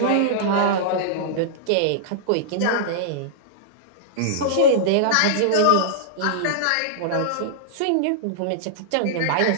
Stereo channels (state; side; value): different; both; correlation -0.02